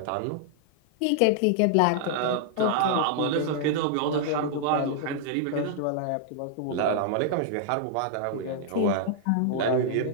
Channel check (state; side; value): different; both; correlation -0.01